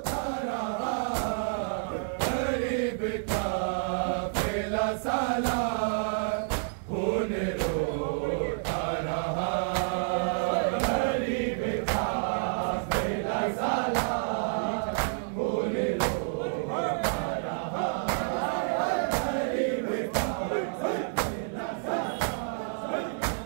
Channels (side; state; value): left; silent; digital silence